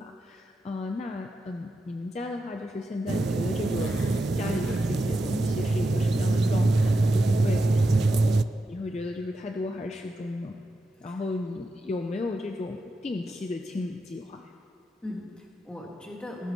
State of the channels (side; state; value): both; normal; correlation 0.87